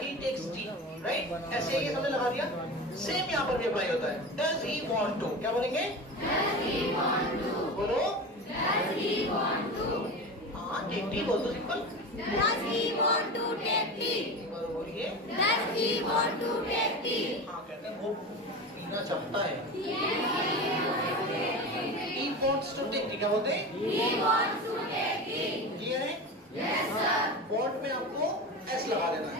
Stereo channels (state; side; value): normal; both; correlation 0.27